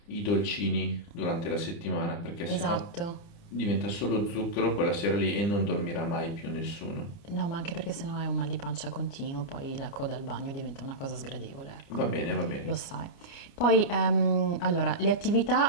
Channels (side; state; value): right; late; 29 ms